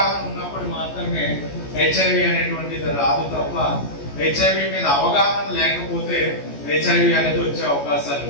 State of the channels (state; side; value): late; right; 14 ms